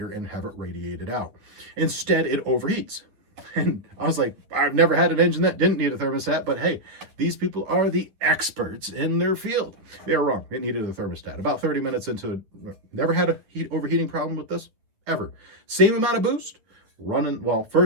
and have it radiated out. Instead, it overheats. And I was like, I've never had an engine that didn't need a thermostat, but hey, these people are the experts in their field. They were wrong. It needed a thermostat. About 30 minutes into it, never had a overheating problem with this, ever. Same amount of boost, running, well,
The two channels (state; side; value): late; left; 10 ms